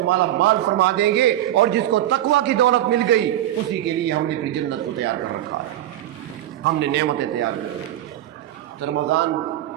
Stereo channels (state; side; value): quieter; left; 13.0 dB